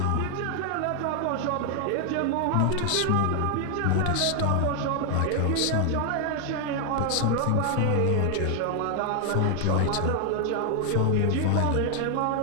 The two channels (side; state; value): both; different; correlation 0.00